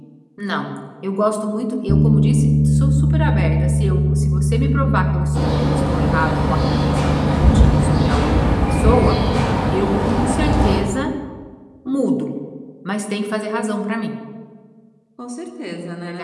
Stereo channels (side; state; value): both; identical; correlation 1.00